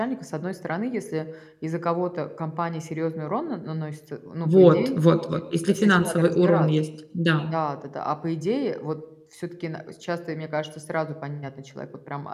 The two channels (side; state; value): both; identical; correlation 1.00